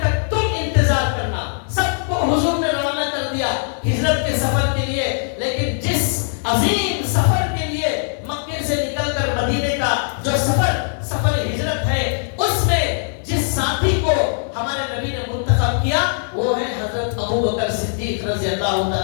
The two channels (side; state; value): right; silent; 64 dB below the other